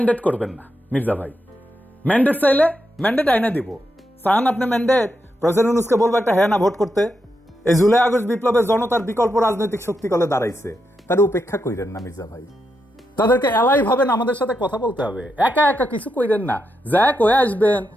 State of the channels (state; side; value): normal; both; correlation 0.84